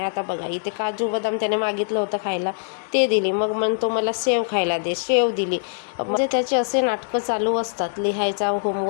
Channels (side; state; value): right; silent; digital silence